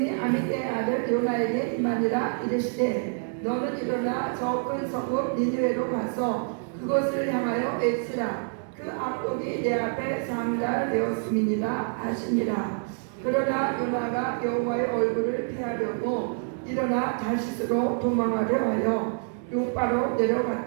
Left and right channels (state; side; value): silent; left; 60 dB below the other